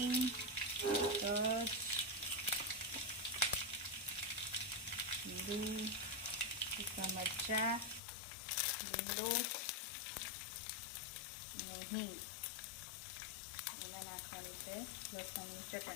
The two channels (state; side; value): drops out; right; at 8.0 s